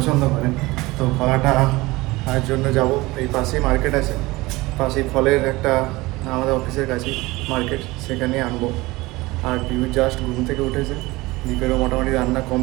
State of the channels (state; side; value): quieter; left; 20.9 dB